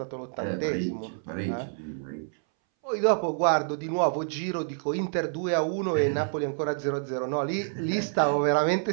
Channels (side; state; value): left; silent; 60 dB below the other